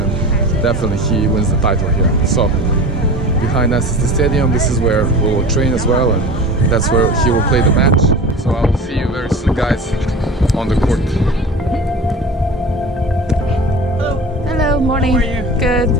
definitely he wins the title here. So behind us is the stadium. This is where we will train as well, and that's where he will play the match. So I will see you very soon, guys, on the court. Hello, morning. How are you? Good.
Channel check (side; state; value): both; normal; correlation 0.34